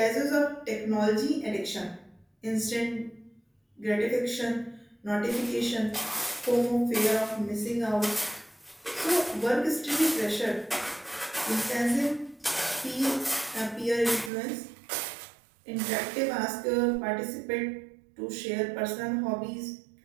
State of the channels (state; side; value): drops out; left; at 14.3 s